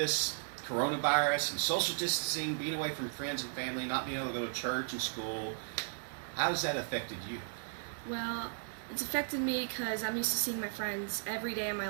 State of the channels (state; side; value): silent; left; 54 dB below the other